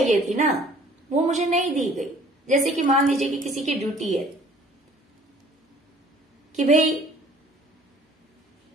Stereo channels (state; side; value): normal; both; correlation 0.53